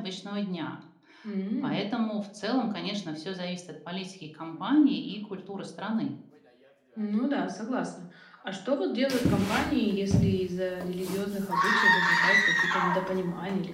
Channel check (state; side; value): identical; both; correlation 1.00